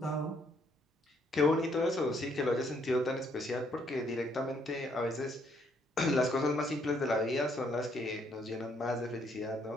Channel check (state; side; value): normal; both; correlation 0.70